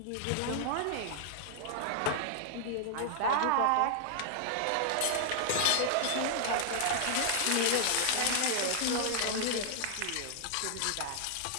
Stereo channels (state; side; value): different; both; correlation -0.01